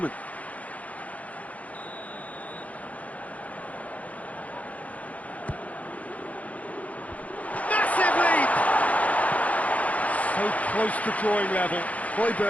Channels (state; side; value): late; right; 0.069 ms